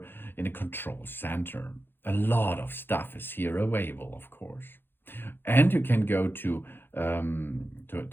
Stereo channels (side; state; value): right; late; 0.10 ms